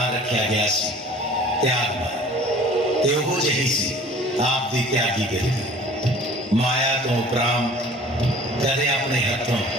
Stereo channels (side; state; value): both; normal; correlation 0.47